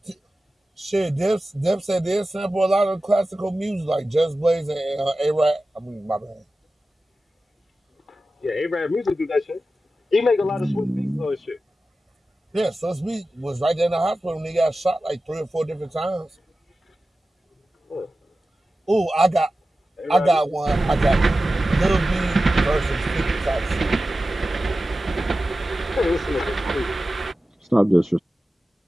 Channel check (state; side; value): normal; both; correlation 0.94